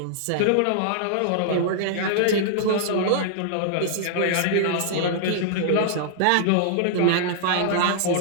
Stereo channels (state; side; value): different; both; correlation -0.01